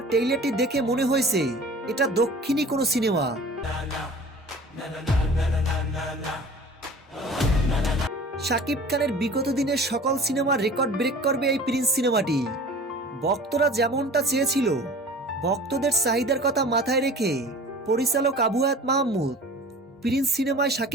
ট্রেইলারটি দেখে মনে হয়েছে এটা দক্ষিণী কোনো সিনেমা। শাকিব খানের বিগত দিনের সকল সিনেমার রেকর্ড ব্রেক করবে এই প্রিন্স সিনেমাটি। ভক্তরা যেমনটা চেয়েছিল, ভক্তদের চাহিদার কথা মাথায় রেখে পরিচালক আবু হায়াত মাহমুদ প্রিন্স সিনেমায়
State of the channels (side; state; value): both; normal; correlation 0.43